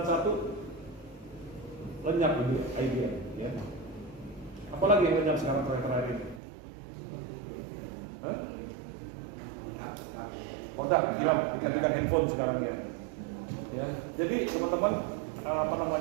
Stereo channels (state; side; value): drops out; left; at 6.4 s